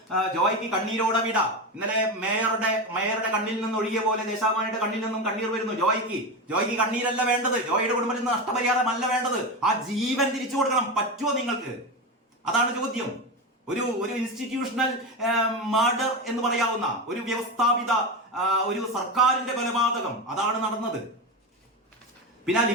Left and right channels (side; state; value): both; normal; correlation 0.18